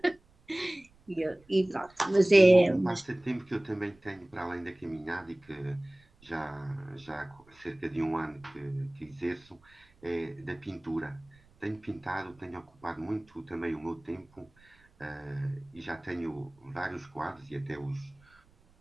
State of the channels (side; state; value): right; noise; rumble, 30 dB below the sound